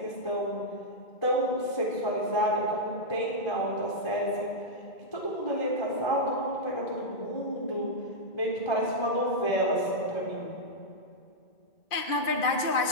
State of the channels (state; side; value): late; right; 2.4 ms